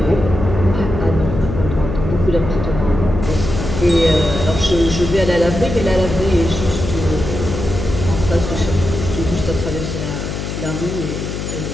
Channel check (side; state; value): left; noise; hum, 5 dB below the sound